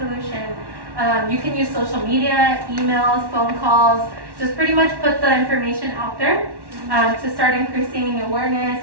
You can use social media, emails, phone calls, just pretty much put the information out there to start increasing awareness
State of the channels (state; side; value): late; left; 1.1 ms